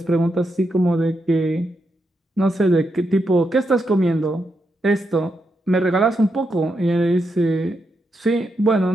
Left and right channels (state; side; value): normal; both; correlation 0.83